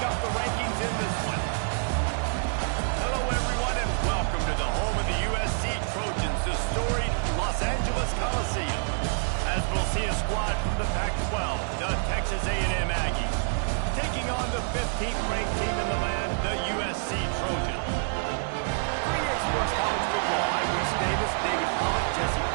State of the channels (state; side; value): silent; left; digital silence